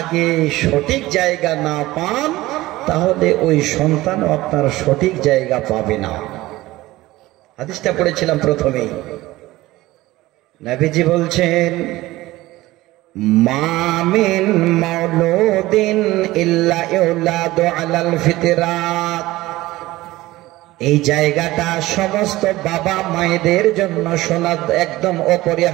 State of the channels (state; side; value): quieter; left; 18.0 dB